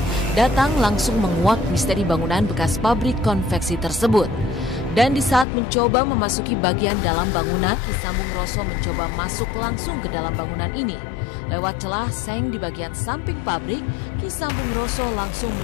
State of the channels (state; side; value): drops out; right; at 5.5 s